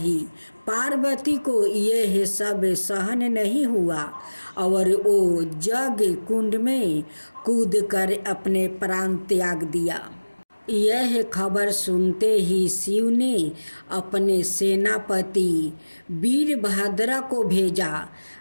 पार्वती को यह सब सहन नहीं हुआ और वो जग कुंड में कूदकर अपने प्राण त्याग दिया। यह खबर सुनते ही शिव ने अपने सेनापति वीरभद्र को भेजा,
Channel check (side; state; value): both; inverted; correlation -1.00